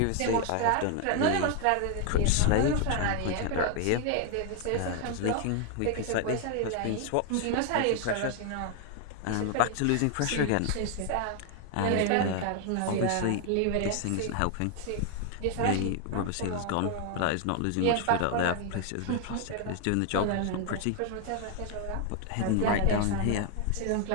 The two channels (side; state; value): both; different; correlation 0.00